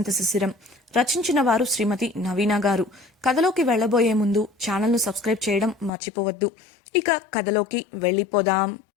శిశిరం. రచించిన వారు శ్రీమతి నవీన గారు. కథలోకి వెళ్లబోయే ముందు ఛానల్ను సబ్స్క్రైబ్ చేయడం మర్చిపోవద్దు. ఇక కథలోకి వెళ్ళిపోదాం.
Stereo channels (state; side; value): drops out; right; at 5.9 s